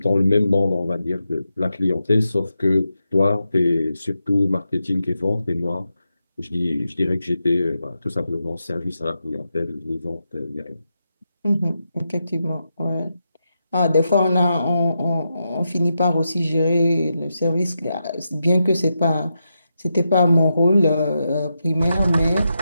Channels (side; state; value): both; inverted; correlation -0.87